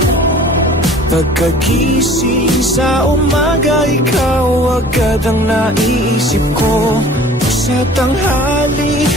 Pagkagising sa umaga, ikaw agad ang naiisip ko. Sa tanghali,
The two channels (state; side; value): normal; both; correlation 0.47